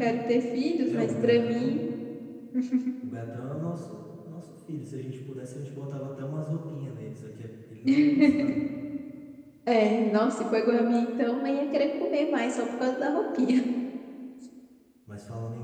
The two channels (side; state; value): both; identical; correlation 1.00